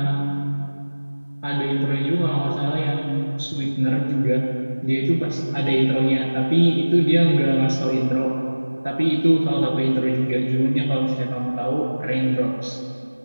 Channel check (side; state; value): both; inverted; correlation -1.00